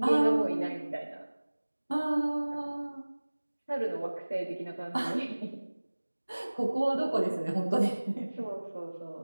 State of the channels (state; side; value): inverted; both; correlation -1.00